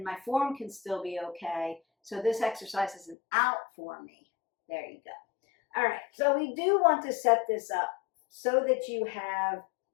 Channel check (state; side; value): drops out; right; at 3.2 s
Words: my form can still be okay. So this exercise isn't out for me. There you go. All right, so we do want to set this up so that you have